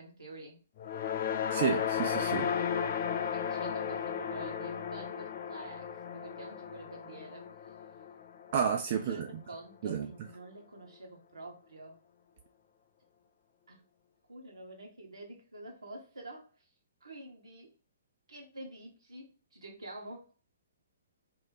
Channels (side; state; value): both; inverted; correlation -0.41